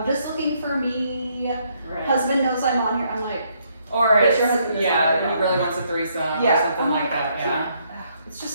just looking for me. Right. Husband knows I'm on here. I'm like, Or But it's, your husband is yeah, not he really wants a threesome yeah, or something I'm like that. Yeah. It's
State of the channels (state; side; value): inverted; both; correlation -0.71